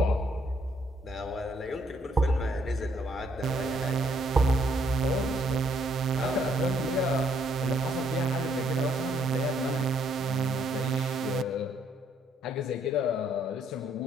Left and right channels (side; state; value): both; normal; correlation 0.70